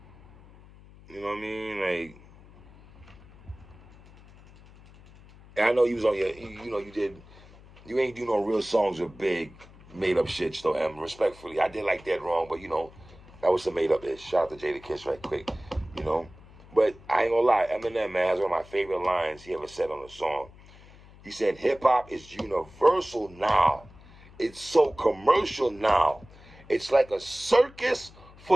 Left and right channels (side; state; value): left; noise; hum, 22 dB below the sound